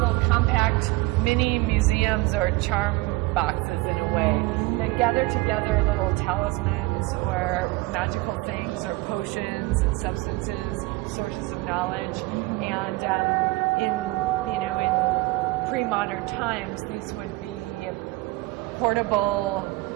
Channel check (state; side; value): quieter; left; 21.4 dB